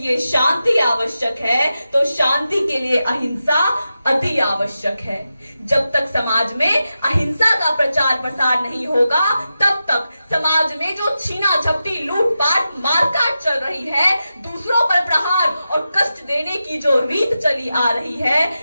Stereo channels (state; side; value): inverted; both; correlation -0.91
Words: शांति आवश्यक है, तो शांति के लिए अहिंसा अति आवश्यक है। जब तक समाज में अहिंसा का प्रचार प्रसार नहीं होगा, तब तक समाज में जो छीना झपटी, लूटपाट, मारकाट चल रही है, दूसरों पर प्रहार और कष्ट देने की जो रीत चली आ रही है,